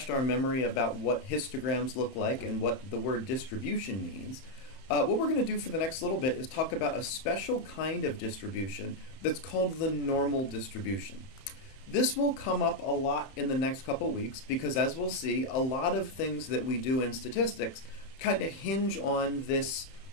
our memory about what histograms look like and what the word distribution means, what we're going to do for the next little bit is talk about a special kind of distribution that's called the normal distribution. This will come up a lot in the next couple weeks because, as we'll see, a lot of things that we do in statistics kind of hinge on this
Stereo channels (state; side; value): late; right; 31 ms